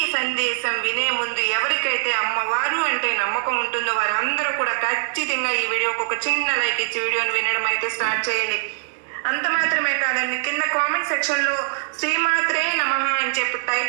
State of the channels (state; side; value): silent; left; digital silence